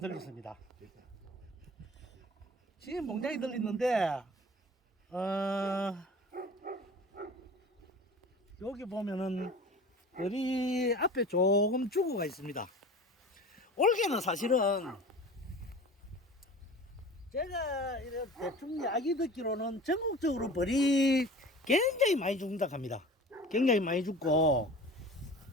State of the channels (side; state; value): both; normal; correlation 0.39